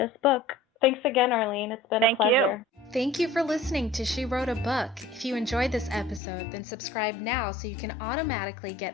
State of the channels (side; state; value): right; drops out; at 6.2 s